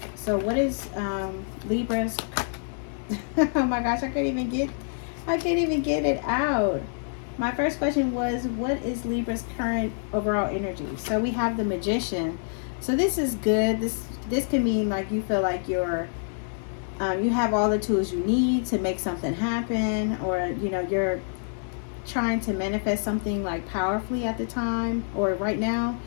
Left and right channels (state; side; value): silent; right; digital silence